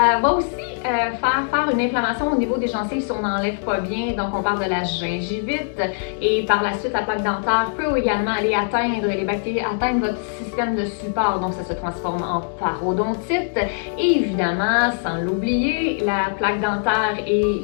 va aussi faire une inflammation au niveau des gencives si on n'enlève pas bien, donc on parle de la gingivite. Et par la suite, la plaque dentaire peut également aller atteindre les bactéries, atteindre votre système de support, donc ça se transforme en parodontite. Et évidemment, sans l'oublier, la plaque dentaire et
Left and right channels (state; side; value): silent; right; digital silence